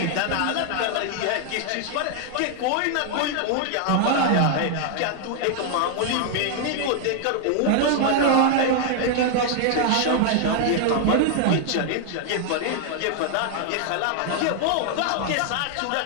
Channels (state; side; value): different; both; correlation 0.00